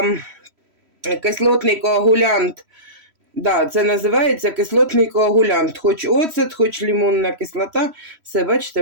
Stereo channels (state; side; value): late; left; 3.1 ms